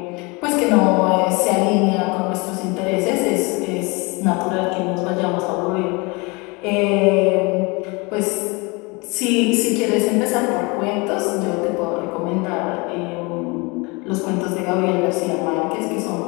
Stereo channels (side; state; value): right; quieter; 27.6 dB